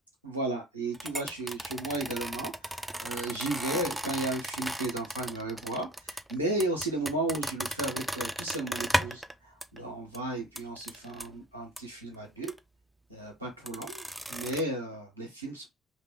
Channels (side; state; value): both; normal; correlation 0.42